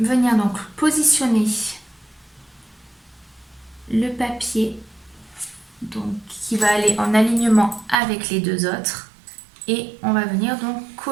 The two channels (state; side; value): drops out; left; at 8.0 s